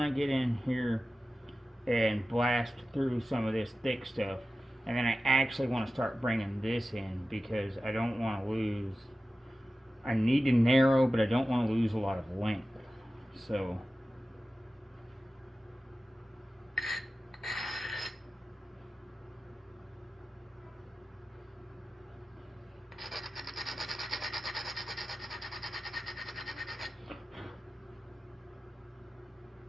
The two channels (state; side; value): normal; both; correlation 0.94